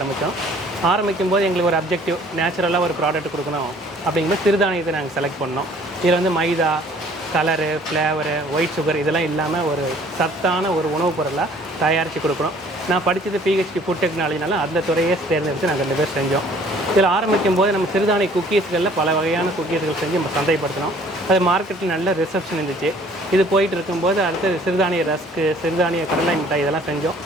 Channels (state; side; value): normal; both; correlation 0.55